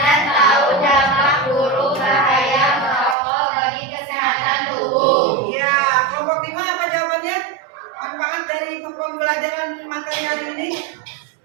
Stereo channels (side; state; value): left; drops out; at 3.2 s